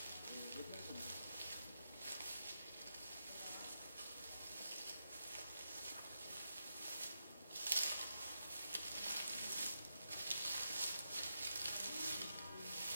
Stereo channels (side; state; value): both; inverted; correlation -0.86